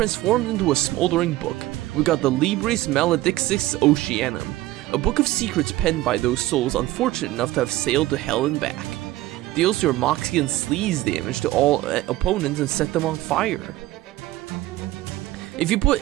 into a smoldering book. We got the Libris Maledixis Oceanum, a book of secrets penned by those souls unfortunate enough to have sailed to hell and back. Deals your moxie and sleaze damage to all opponents and set them on fire. If you put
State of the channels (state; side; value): quieter; left; 16.5 dB